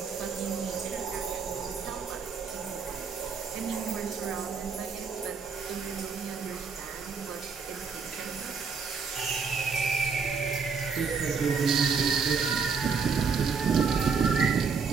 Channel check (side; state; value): left; quieter; 5.5 dB